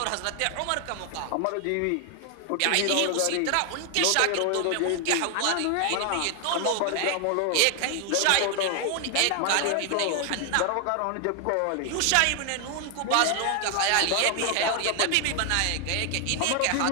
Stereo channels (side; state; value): both; different; correlation 0.00